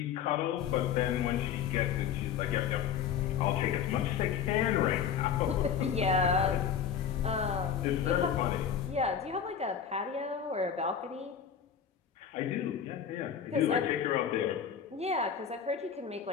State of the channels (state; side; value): quieter; right; 7.9 dB